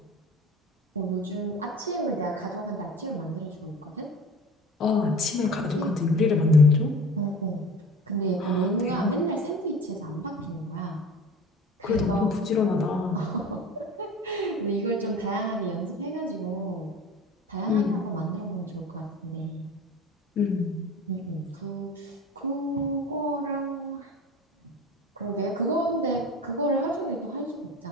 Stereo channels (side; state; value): both; normal; correlation 0.38